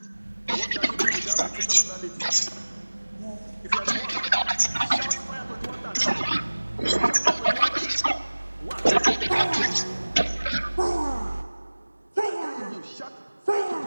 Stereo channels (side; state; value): both; inverted; correlation -1.00